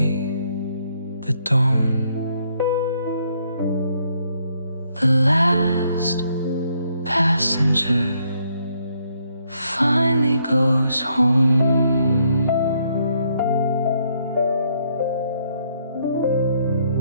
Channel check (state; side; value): inverted; both; correlation -0.72